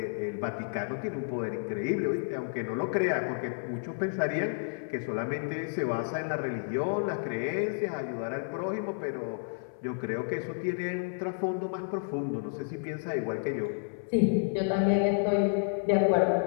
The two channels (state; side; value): silent; right; 57 dB below the other